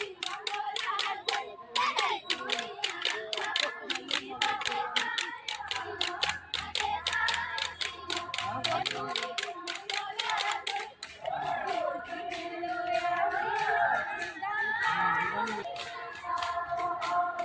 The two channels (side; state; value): both; identical; correlation 1.00